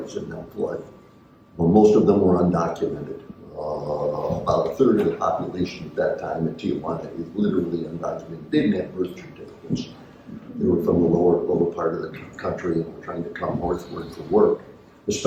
in that flood. Well, most of them were undocumented. About a third of the population at that time in Tijuana is literally undocumented. They didn't have birth certificates. They were from the lower part of the country and were trying to come northward for work,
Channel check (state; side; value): identical; both; correlation 1.00